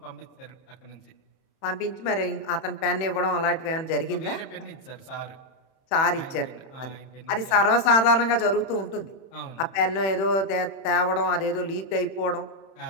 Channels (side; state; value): right; late; 31 ms